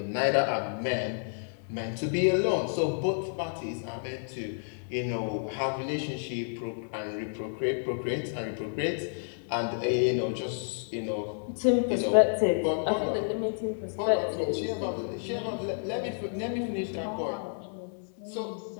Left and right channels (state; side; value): silent; right; 58 dB below the other